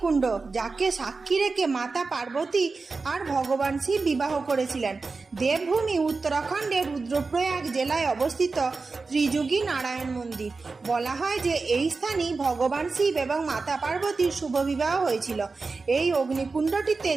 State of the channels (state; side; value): quieter; left; 4.1 dB